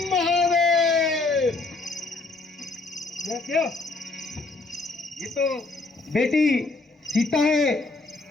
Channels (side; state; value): right; quieter; 3.5 dB